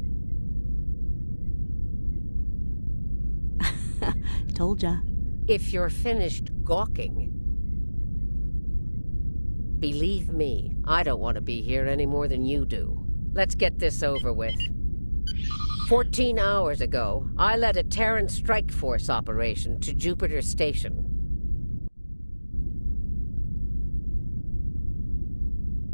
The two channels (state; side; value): inverted; both; correlation -1.00